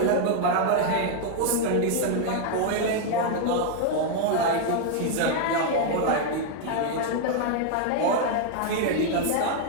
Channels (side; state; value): both; different; correlation 0.00